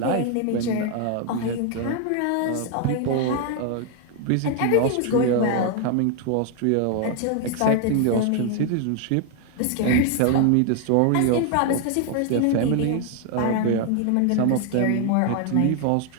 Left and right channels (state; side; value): different; both; correlation 0.00